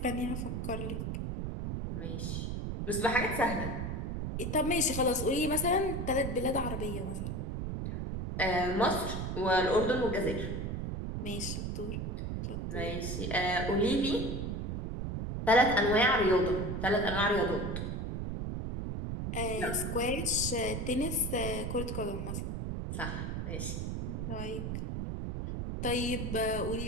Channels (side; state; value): right; noise; rumble, 3 dB below the sound